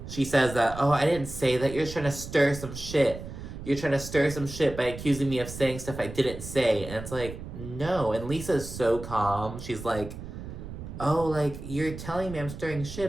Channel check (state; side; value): noise; right; rumble, 10 dB below the sound